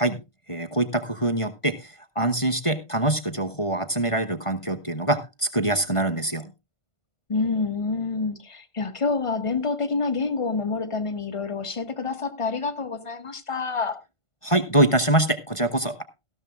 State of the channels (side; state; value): right; late; 1.5 ms